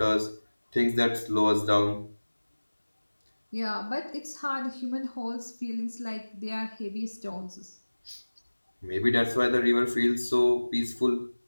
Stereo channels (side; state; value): both; inverted; correlation -1.00